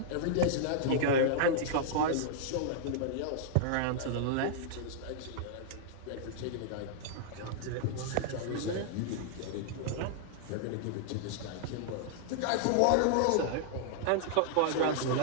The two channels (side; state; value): both; different; correlation -0.01